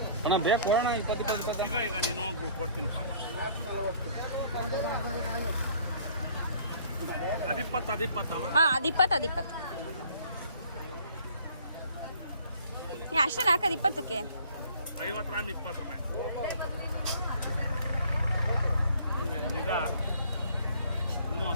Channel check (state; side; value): inverted; both; correlation -0.56